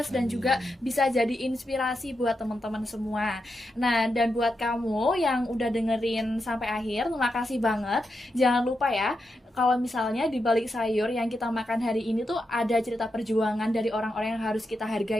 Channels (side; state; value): both; normal; correlation 0.86